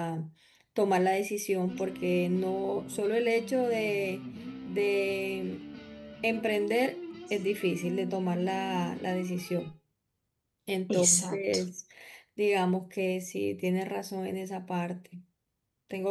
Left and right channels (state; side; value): identical; both; correlation 1.00